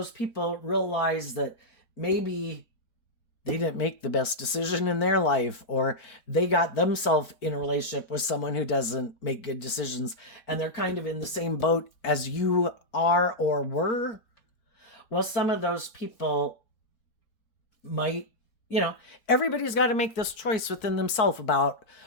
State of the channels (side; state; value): right; late; 4.5 ms